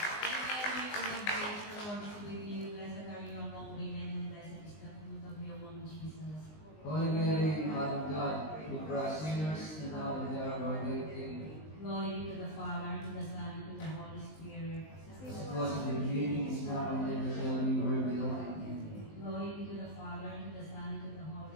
Holy Mary, Mother of God, who for us sinners and now and there of our death King. Glory be to the Father, to the Son, and to the Holy Spirit. As it was in the beginning, is now, and ever shall be, world without end. Glory be to the Father, to the Son, and to the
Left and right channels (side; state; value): right; late; 19 ms